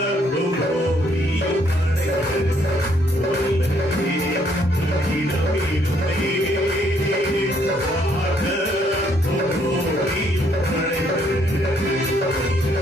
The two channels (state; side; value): normal; both; correlation 0.69